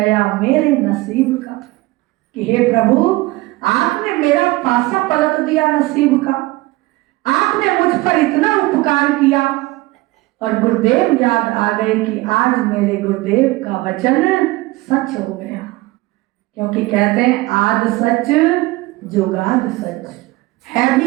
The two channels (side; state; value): left; quieter; 20.3 dB